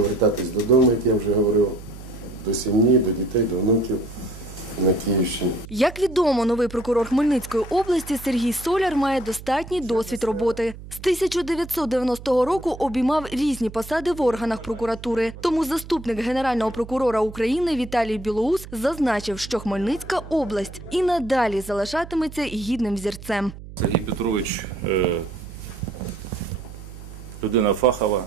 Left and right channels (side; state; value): right; noise; hum, 14 dB below the sound